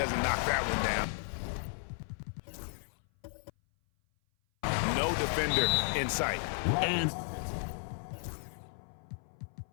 knock that one down. No defender in sight. And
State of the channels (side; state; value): right; silent; 55 dB below the other